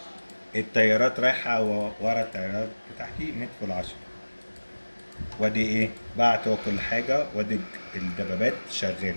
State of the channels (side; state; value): both; inverted; correlation -1.00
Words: الطيارات رايحة ورا الطيارات بتاعتي ندخل العشرة. وادي ايه بعت هو كل حاجة، وادي الدبابات